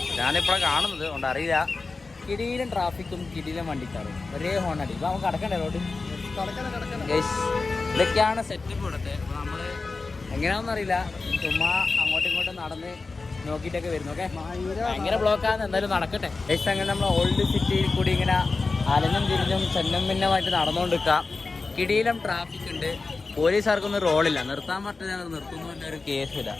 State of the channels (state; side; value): quieter; right; 3.9 dB